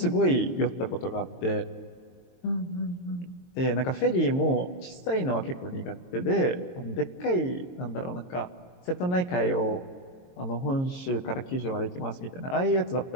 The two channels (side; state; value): right; late; 22 ms